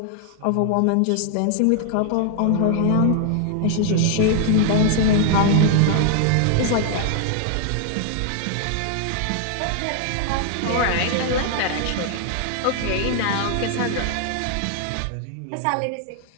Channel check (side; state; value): both; different; correlation 0.00